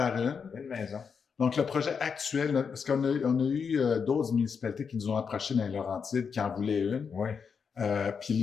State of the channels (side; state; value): right; quieter; 6.2 dB